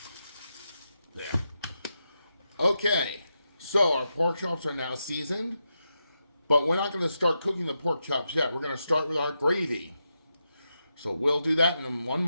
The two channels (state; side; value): inverted; both; correlation -0.86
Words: there. Okay, so our pork chops are now seasoned, but we're not going to start cooking the pork chops yet. We're going to start with our gravy. So we'll do that in one